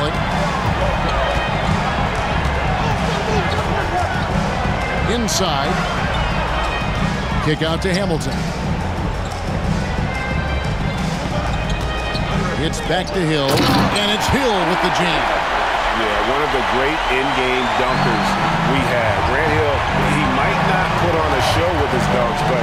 it. Inside. Kick out to Hamilton. It's back to Hill, and it's Hill with the jam. Yeah, one of the great in-game dunkers we have. Grant Hill, he might not put on a show with his dunks, but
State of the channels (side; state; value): both; identical; correlation 1.00